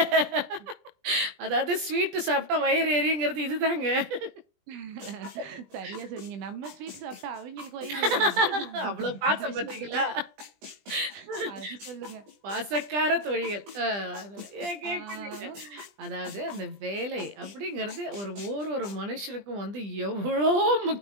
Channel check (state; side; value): late; left; 20 ms